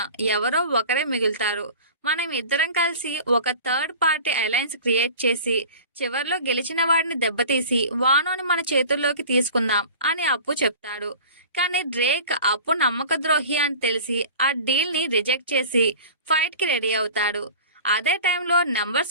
ఎవరో ఒకరే మిగులుతారు. మనం ఇద్దరం కలిసి ఒక థర్డ్ పార్టీ అలయన్స్ క్రియేట్ చేసి చివర్లో గెలిచిన వాడిని దెబ్బతీసి వానోని మన చేతుల్లోకి తీసుకుందాం అని అప్పు చెప్తాడు. కానీ డ్రేక్ అప్పు నమ్మక ద్రోహి అని తెలిసి ఆ డీల్ ని రిజెక్ట్ చేసి ఫైట్ కి రెడీ అవుతాడు. అదే టైంలో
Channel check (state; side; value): inverted; both; correlation -0.39